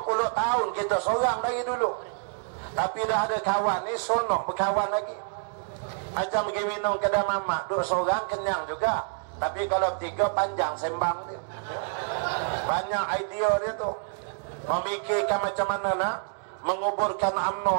10 tahun kita seorang dari dulu. Tapi dah ada kawan ni sonok berkawan lagi. Macam pergi minum kedai mamak, duduk seorang kenyang juga. Tapi kalau bertiga panjang sembang dia. Banyak idea dia tu. Memikirkan macam mana nak menguburkan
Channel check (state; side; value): silent; left; digital silence